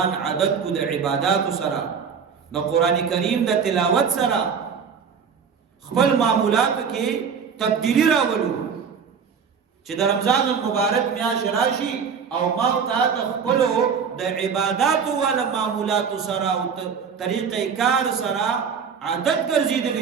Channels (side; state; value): left; quieter; 6.4 dB